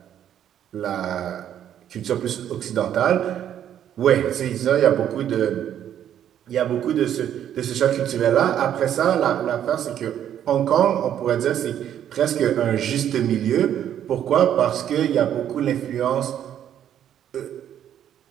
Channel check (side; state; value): left; quieter; 10.2 dB